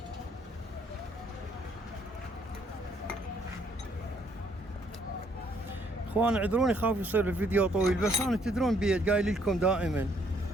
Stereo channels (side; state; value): both; normal; correlation 0.67